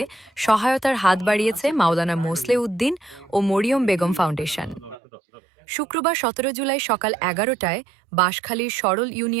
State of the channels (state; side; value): drops out; left; at 5.0 s